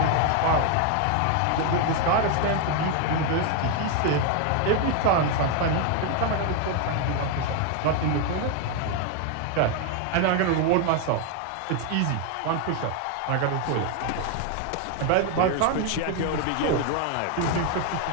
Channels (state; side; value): different; both; correlation 0.01